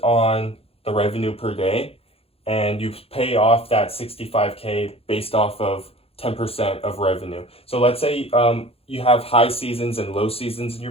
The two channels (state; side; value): late; right; 0.28 ms